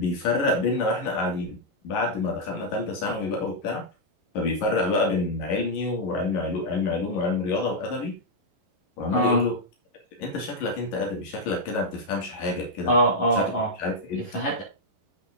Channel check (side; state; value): right; late; 11 ms